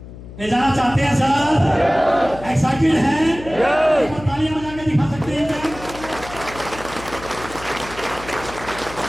ले जाना चाहते हैं सर? एक्साइटेड हैं? तालियां बजा के दिखा सकते हैं क्या?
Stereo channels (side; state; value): left; noise; hum, 15 dB below the sound